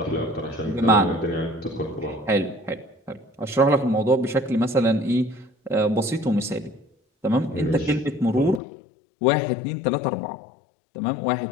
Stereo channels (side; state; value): right; drops out; at 8.6 s